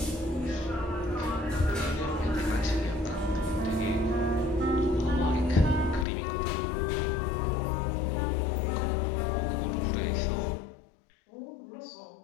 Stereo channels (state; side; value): drops out; right; at 6.1 s